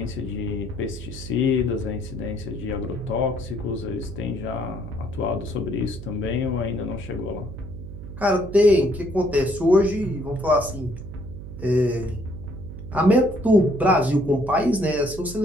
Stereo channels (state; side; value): noise; right; hum, 11 dB below the sound